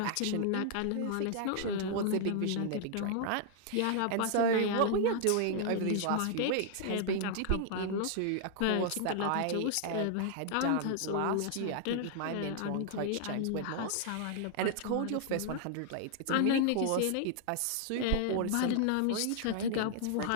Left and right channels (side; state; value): both; different; correlation 0.00